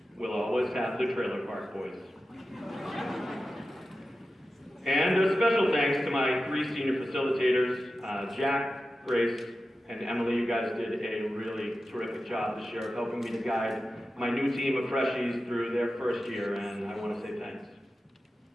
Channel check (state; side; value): normal; both; correlation 0.92